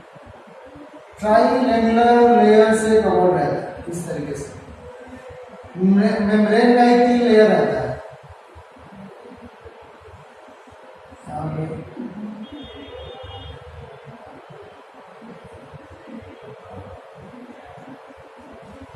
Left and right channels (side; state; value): both; identical; correlation 1.00